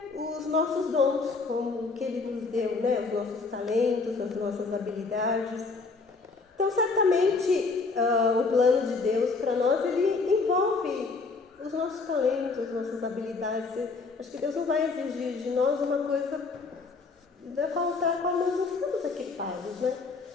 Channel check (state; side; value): quieter; right; 4.2 dB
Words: os nossos dons, como que Ele nos deu, né? Os nossos talentos, as nossas habilidades. Então, certamente, o plano de Deus para nós, ele envolve os nossos talentos, as nossas habilidades. Acho que Deus não vai exigir de nós uma coisa da qual nós não estamos equipados, né?